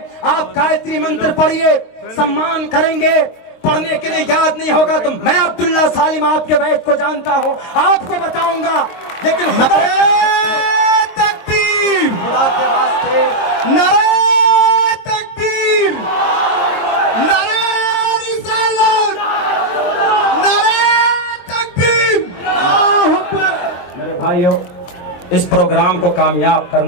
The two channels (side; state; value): right; late; 23 ms